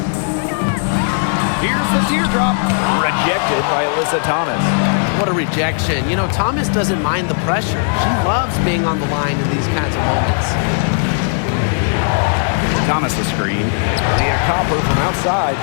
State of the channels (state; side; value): silent; right; digital silence